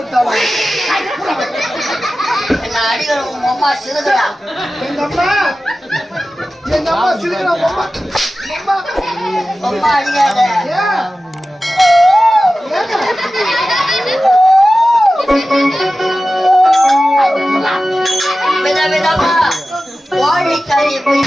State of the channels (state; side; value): normal; both; correlation 0.95